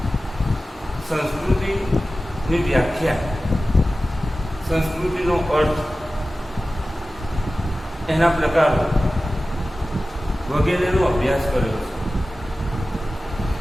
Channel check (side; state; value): both; normal; correlation 0.95